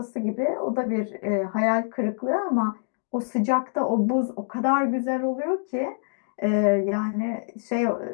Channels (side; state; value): right; silent; digital silence